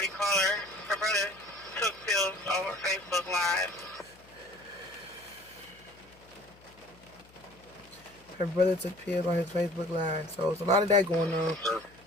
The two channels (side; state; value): left; noise; hum, 26 dB below the sound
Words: Her brother took pills over Facebook Live. Her brother took pills on his Facebook Live. So there's a lot of that going on.